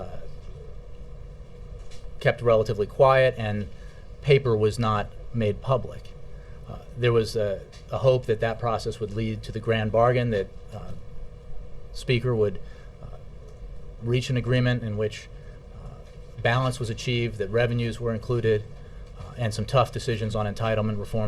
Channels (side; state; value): both; identical; correlation 1.00